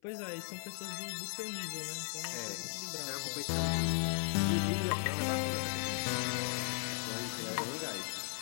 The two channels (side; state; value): right; silent; 53 dB below the other